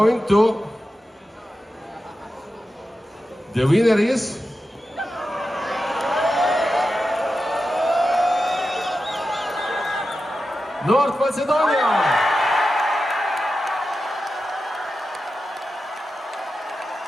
to, the winner is North Macedonia!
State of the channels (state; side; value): normal; both; correlation 0.91